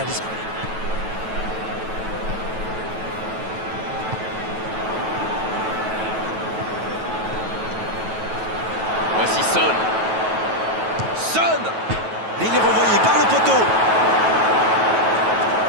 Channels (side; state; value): left; late; 9.2 ms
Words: d'esprit. Voici Son. Son. Et il est renvoyé par le poteau.